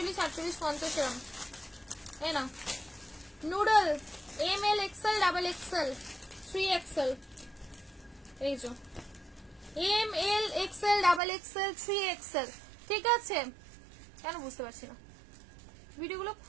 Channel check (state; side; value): drops out; left; at 11.2 s